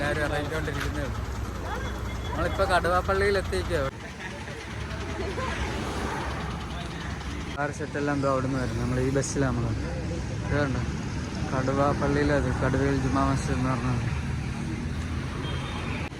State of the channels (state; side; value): identical; both; correlation 1.00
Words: ഇറങ്ങിക്കൊണ്ടിരിക്കുന്നേ ഉള്ളൂ. നമ്മളിപ്പോൾ കടുവാപ്പള്ളിയിൽ എത്തിക്കോ. പിള്ളേർ സെറ്റെല്ലാം എന്തോ അവിടെ നിന്ന് വരും. നമ്മൾ ഈ ബസ്സിലാണ് നമ്മൾ ഇതുണ്ട്. കടുവാപ്പള്ളിയിലത് കടുവയിൽ ജുമാ മസ്ജിദ് എന്ന് പറഞ്ഞത്.